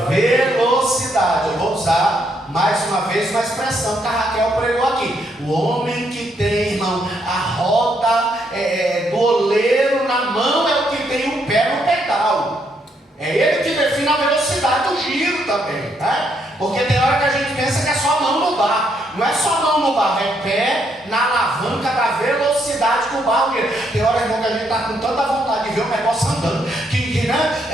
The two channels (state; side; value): normal; both; correlation 0.74